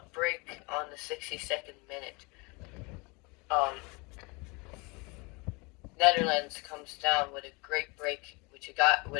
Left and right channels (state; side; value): quieter; right; 28.2 dB